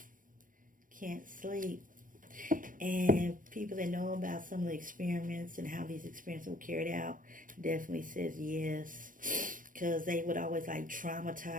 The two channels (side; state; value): left; late; 0.39 ms